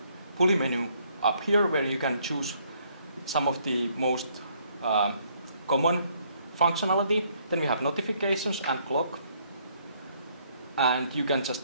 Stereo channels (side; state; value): both; inverted; correlation -0.67